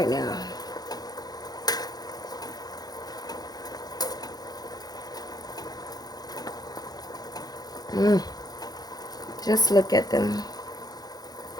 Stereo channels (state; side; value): late; right; 0.19 ms